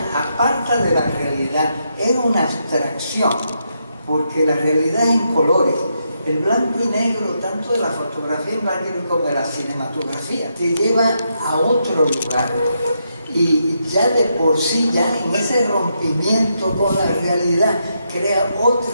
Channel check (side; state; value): both; inverted; correlation -0.81